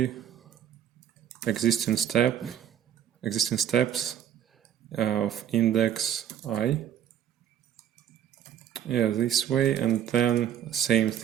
existing steps of index I. This way, and then same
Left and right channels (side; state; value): left; quieter; 10.0 dB